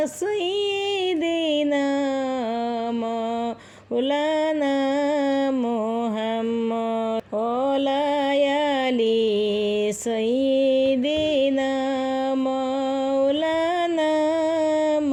সাইয়্যিদিনা মাওলানা মুহাম্মদ ওয়া আলি সাইয়্যিদিনা মাওলানা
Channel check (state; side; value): identical; both; correlation 1.00